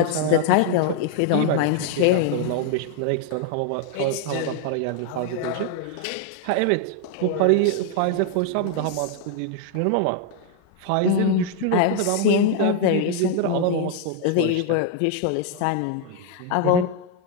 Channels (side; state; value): both; different; correlation 0.00